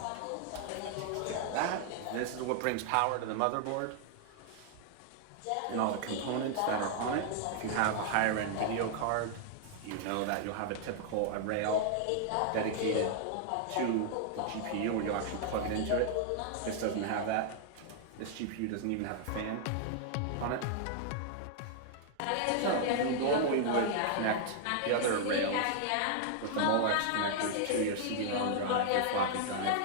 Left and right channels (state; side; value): different; both; correlation -0.01